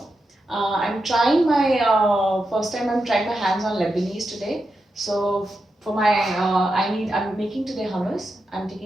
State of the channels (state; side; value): normal; both; correlation 0.88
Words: I'm trying my first time. I'm trying my hands on Lebanese today. So for my I'm making today hummus. I'm